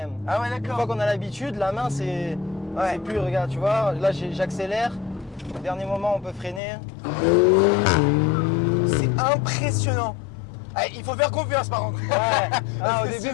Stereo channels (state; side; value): drops out; right; at 6.6 s